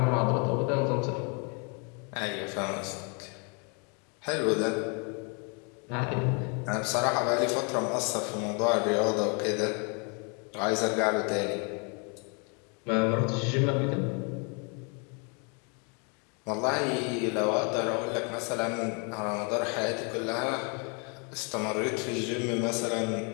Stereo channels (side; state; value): right; quieter; 35.7 dB